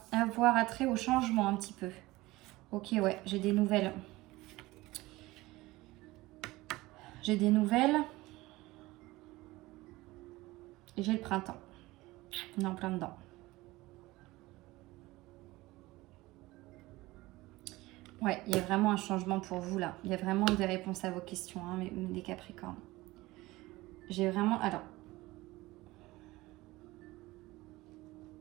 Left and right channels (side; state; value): left; quieter; 19.6 dB